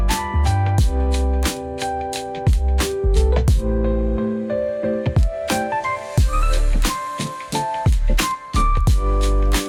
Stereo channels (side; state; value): both; identical; correlation 1.00